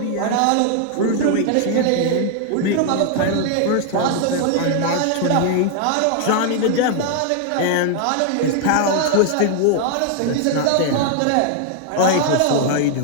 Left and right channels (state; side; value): different; both; correlation 0.00